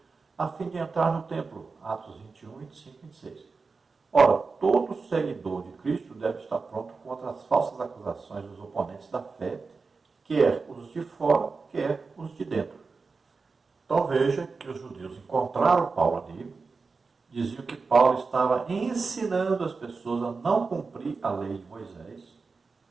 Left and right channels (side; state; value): left; quieter; 4.4 dB